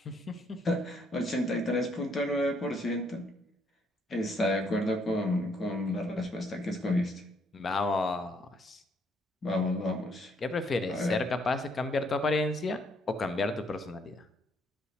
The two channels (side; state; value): both; normal; correlation 0.69